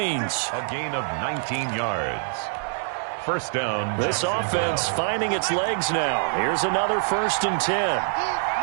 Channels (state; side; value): silent; left; 62 dB below the other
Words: A gain of 19 yards. First down. This offense finding its legs now. Here's another 1st and 10.